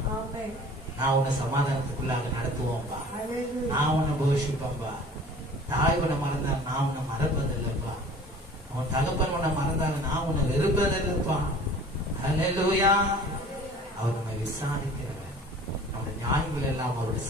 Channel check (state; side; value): normal; both; correlation 0.46